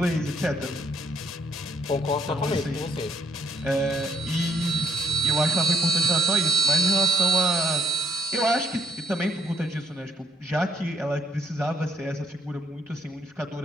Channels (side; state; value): both; normal; correlation 0.68